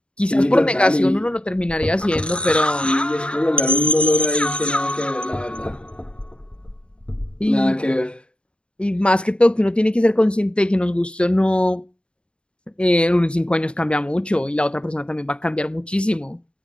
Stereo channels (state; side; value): late; right; 0.055 ms